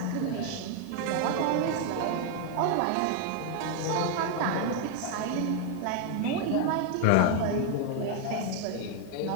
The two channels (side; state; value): both; different; correlation 0.01